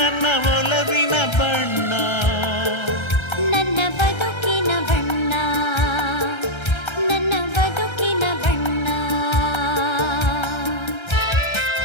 ಒಲವಿನ ಬಣ್ಣ ನನ್ನ ಬದುಕಿನ ಬಣ್ಣ ನನ್ನ ಬದುಕಿನ ಬಣ್ಣ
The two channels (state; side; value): late; right; 1.3 ms